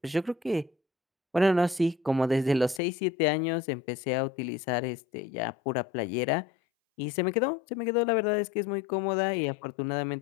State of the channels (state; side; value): drops out; right; at 2.8 s